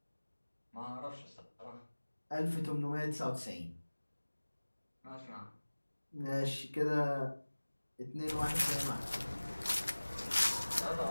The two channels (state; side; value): inverted; both; correlation -1.00